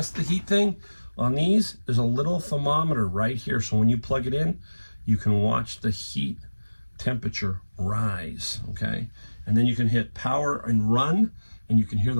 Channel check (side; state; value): both; inverted; correlation -1.00